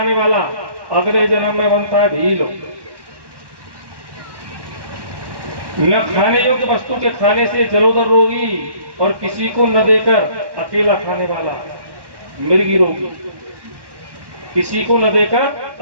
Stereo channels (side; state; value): left; late; 1.1 ms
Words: वाला अगले जन्म में बनता है ढील। न खाने योग्य वस्तु के खाने से जलोदर रोगी और किसी को न देकर अकेला खाने वाला मिर्गी रोगी। किसी को न देकर